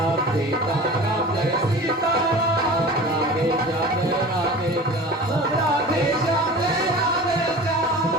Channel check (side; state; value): both; normal; correlation 0.38